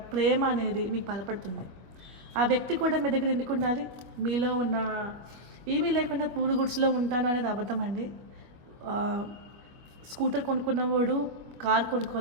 ప్రేమ అనేది మీకు బలపడుతుంది. ఆ వ్యక్తి కూడా మీ దగ్గర ఎందుకు ఉండాలి? మీలో ఉన్న ఏమీ లేకుండా పూడు గుడ్స్లో ఉంటాను అనేది అబద్ధం అండి. స్కూటర్ కొనుక్కున్నవాడు కార్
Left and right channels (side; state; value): left; late; 24 ms